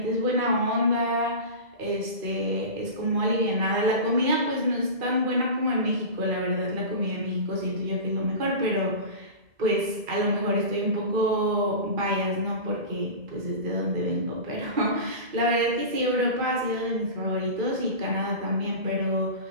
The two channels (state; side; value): late; left; 2.0 ms